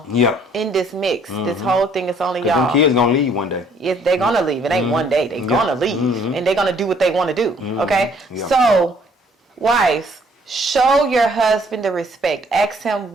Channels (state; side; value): normal; both; correlation 0.61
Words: Yep. in this mix. This whole thing is only 'Cause y'all. them kids gonna leave one day. Yes, they're gonna leave. It ain't one day. They're gonna leave, and they're gonna do what they want to do. Okay. Yeah. So, wives, show your husband the respect. Ask him,